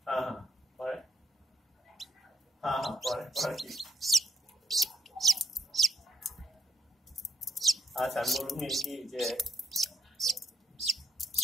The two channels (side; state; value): both; normal; correlation 0.76